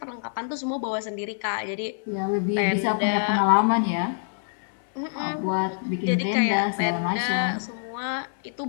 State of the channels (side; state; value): right; silent; 61 dB below the other